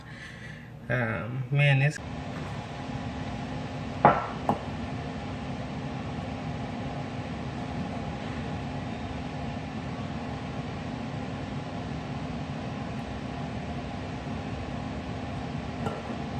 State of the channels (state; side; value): identical; both; correlation 1.00